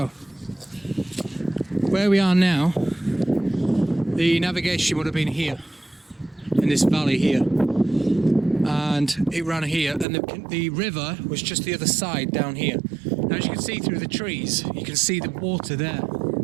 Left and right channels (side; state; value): left; drops out; at 10.1 s